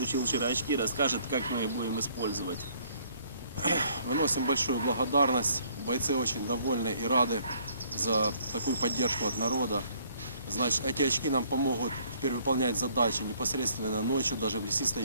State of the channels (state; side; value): inverted; both; correlation -0.63